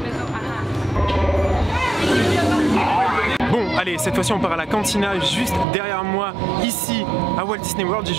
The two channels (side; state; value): left; drops out; at 5.7 s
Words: Bon, allez, cette fois-ci on part à la cantina juste derrière moi, ici à Walt Disney World. J'ai